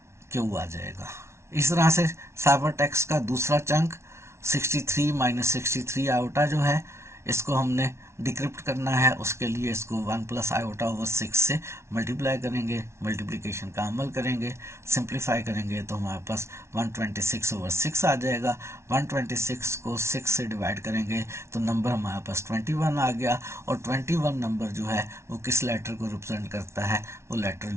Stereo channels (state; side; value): late; left; 0.13 ms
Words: क्यू आ जाएगा। इस तरह से साइफर टेक्स्ट का दूसरा चंक 63 माइनस 63 आयोटा जो है इसको हमने डिक्रिप्ट करना है। उसके लिए इसको 1 प्लस आयोटा ओवर 6 से मल्टीप्लाई करेंगे, मल्टीप्लिकेशन का अमल करेंगे, सिंप्लीफाई करेंगे तो हमारे पास 126 ओवर 6 आ जाएगा। 126 को 6 से डिवाइड करेंगे तो नंबर हमारे पास 21 आ गया, और 21 नंबर जो है वो किस लेटर को रिप्रेजेंट करता है, वो लेटर